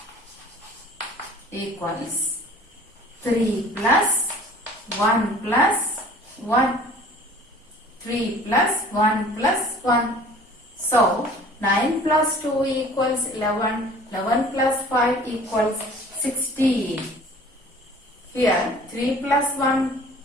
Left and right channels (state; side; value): normal; both; correlation 0.48